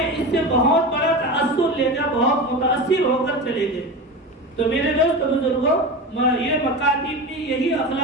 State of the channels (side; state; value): both; normal; correlation 0.26